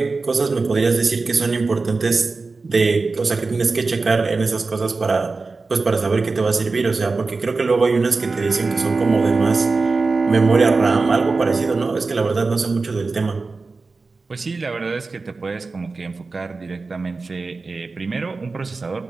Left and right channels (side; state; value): left; quieter; 4.0 dB